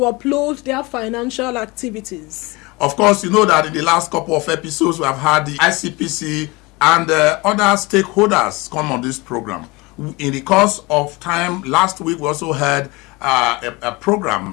their financial activities? Of course, you know that in the last couple of episodes, we have had the ICPC and other stakeholders come on this program. In the course of time, last week, we also had a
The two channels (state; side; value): quieter; right; 24.3 dB